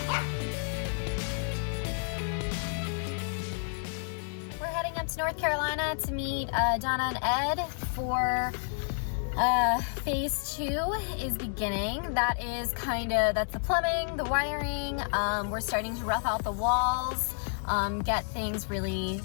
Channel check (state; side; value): silent; right; 58 dB below the other